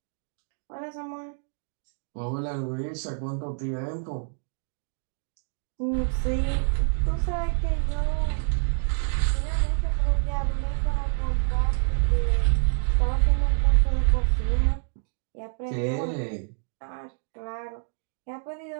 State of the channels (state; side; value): silent; left; digital silence